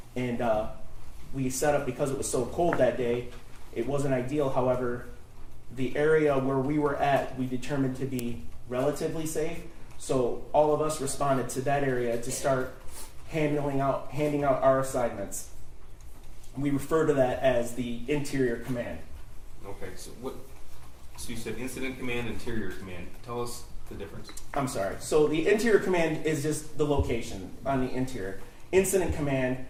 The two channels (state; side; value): identical; both; correlation 1.00